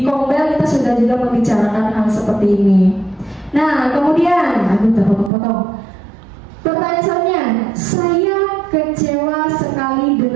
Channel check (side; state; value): left; drops out; at 5.3 s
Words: seperti ini. Nah, kemudian, aduh, udah potong-potong. Pertanyaan selanjutnya, saya kecewa sekali